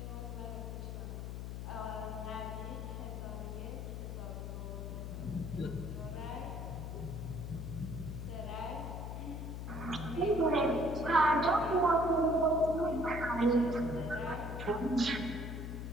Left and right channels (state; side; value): noise; left; hum, 6 dB below the sound